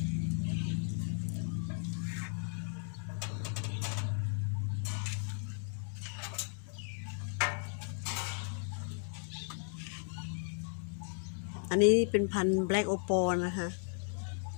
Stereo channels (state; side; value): silent; right; 54 dB below the other